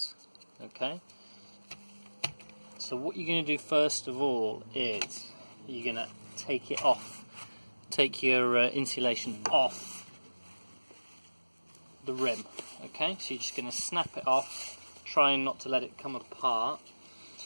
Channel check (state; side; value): inverted; both; correlation -1.00